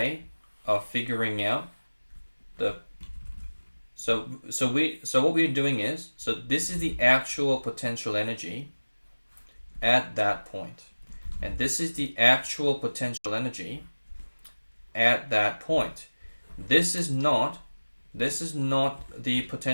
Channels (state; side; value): inverted; both; correlation -1.00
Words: of figuring out the so what we're doing is, so this is the actual potential energy at that point, and this is the actual potential energy at that point. This is not the